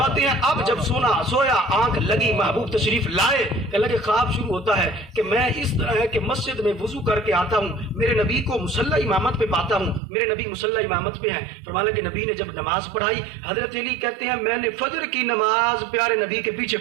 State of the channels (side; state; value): left; drops out; at 10.0 s